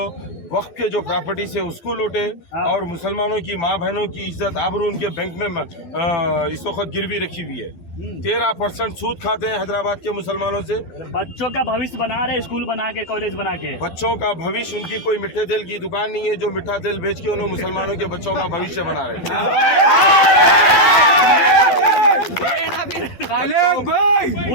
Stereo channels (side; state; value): right; late; 12 ms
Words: वक्त के जो प्रॉपर्टीज है उसको लूटे, और मुसलमानों की माँ बहनों की इज्जत आबरू उनके बैंक में इस वक्त गिरवी रखी हुई है। 13% सूद खाते हैं हैदराबाद के मुसलमानों से। बच्चों का भविष्य बना रहे, स्कूल बना के, कॉलेज बना के। बच्चों का भविष्य, उनकी कोई मिठे तेल की दुकान नहीं है जो मिठा तेल बेच के उन्होंने मुसलमानों के बच्चों का भविष्य बना रहे हैं।